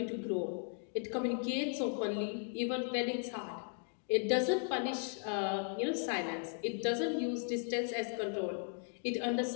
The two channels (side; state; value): right; silent; 53 dB below the other